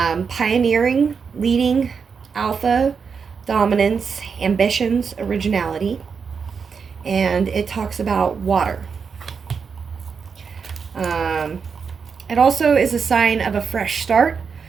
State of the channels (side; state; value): left; quieter; 5.9 dB